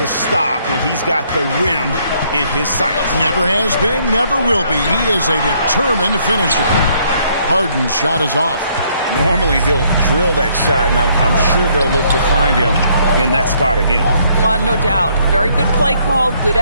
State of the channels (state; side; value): inverted; both; correlation -0.68